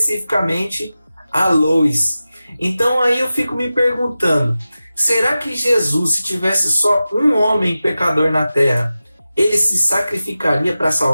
a Lois. Então aí eu fico me perguntando, será que Jesus, se tivesse só um homem pecador na Terra, ele se sacrificaria para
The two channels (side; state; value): both; inverted; correlation -0.94